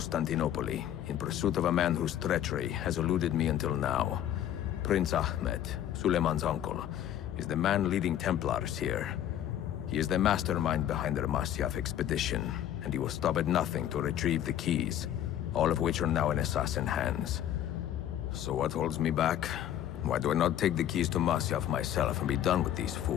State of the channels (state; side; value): quieter; right; 11.2 dB